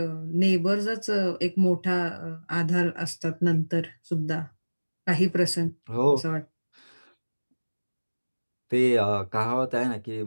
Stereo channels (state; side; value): inverted; both; correlation -1.00